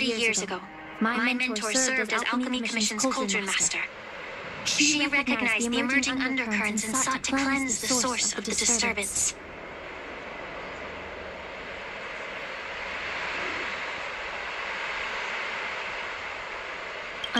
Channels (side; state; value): both; identical; correlation 1.00